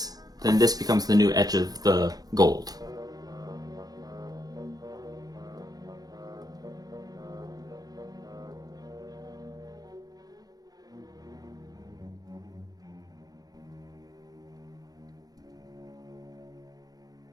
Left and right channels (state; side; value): late; left; 0.19 ms